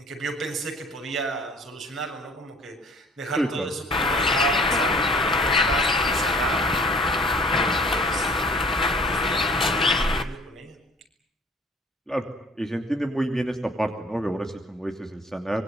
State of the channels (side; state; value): both; normal; correlation 0.53